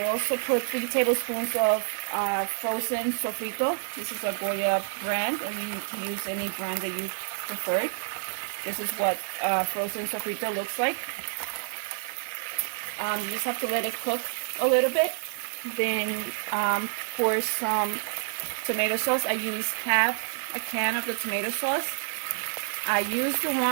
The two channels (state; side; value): silent; left; digital silence